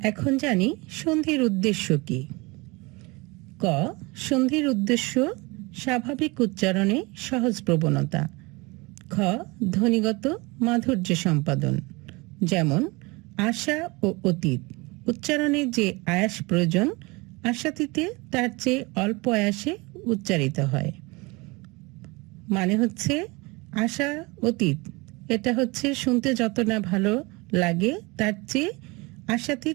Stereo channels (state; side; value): quieter; left; 25.4 dB